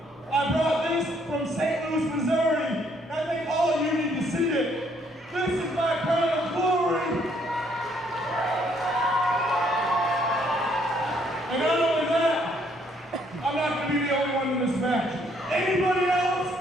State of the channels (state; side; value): normal; both; correlation 0.67